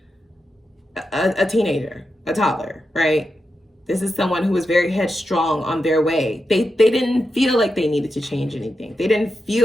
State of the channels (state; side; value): normal; both; correlation 0.88